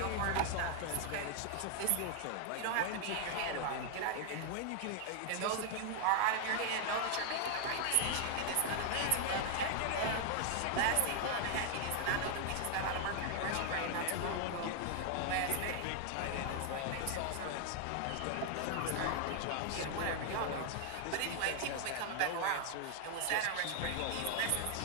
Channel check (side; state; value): both; different; correlation 0.00